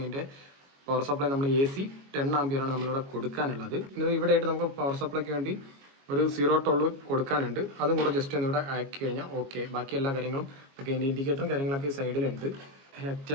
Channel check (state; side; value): late; left; 22 ms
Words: ഇതിൻ്റെ പവർ സപ്ലൈ. നമ്മൾ AC 10 ആംപിയറാണ് നമ്മളിവിടെ കൊടുക്കാനുള്ളത്. ഇവിടെ ആയിട്ട് നമുക്ക് പവർ സപ്ലൈക്ക് വേണ്ടി ഒരു 0 കൊടുക്കാനുണ്ട്. അതും കൂടെ ജസ്റ്റ് ഒന്ന് ഇവിടെ ആക്കി കഴിഞ്ഞാൽ ഓക്കെ. ബാക്കി എല്ലാ കാര്യങ്ങളും ഒക്കെ ഇതിൻ്റെ ഇൻഡിക്കേറ്ററും കാര്യങ്ങളൊക്കെ സൈഡിലുണ്ട്.